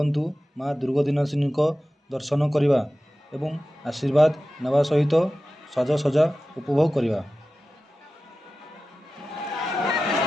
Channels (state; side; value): normal; both; correlation 0.95